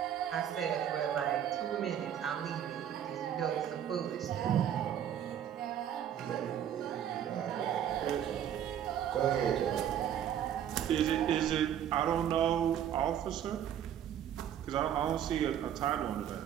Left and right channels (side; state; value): left; quieter; 10.0 dB